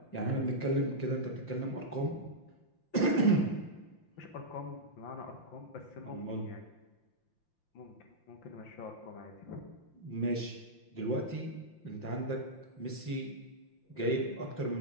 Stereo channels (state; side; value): late; right; 5.8 ms